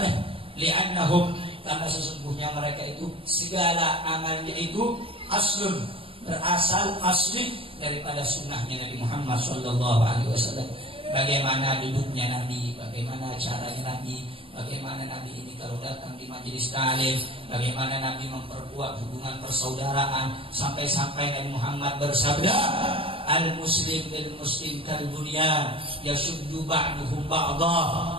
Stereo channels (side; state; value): left; late; 0.26 ms